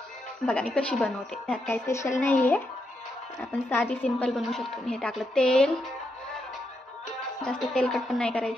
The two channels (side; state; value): both; normal; correlation 0.82